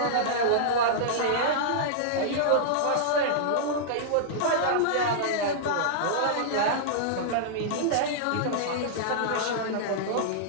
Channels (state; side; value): different; both; correlation -0.02